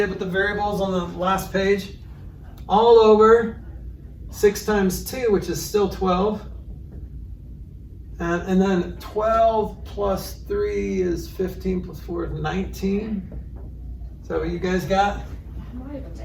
with the variables on the last page. All over 6 times 2, which is still 12. And then 12 plus 3 is 15 plus 4 is 19. Is that what you guys got? I'm not even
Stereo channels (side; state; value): both; identical; correlation 1.00